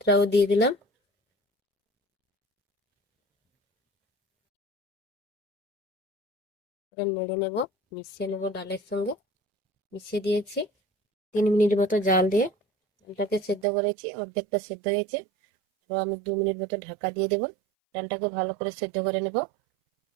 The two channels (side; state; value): left; drops out; at 13.7 s